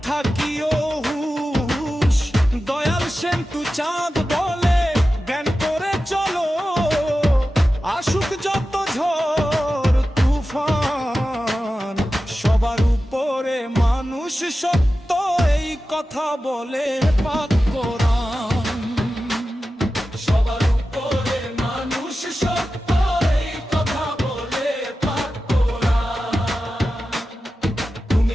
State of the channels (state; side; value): normal; both; correlation 0.93